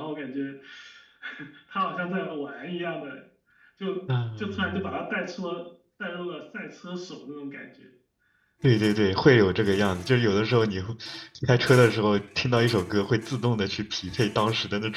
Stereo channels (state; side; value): identical; both; correlation 1.00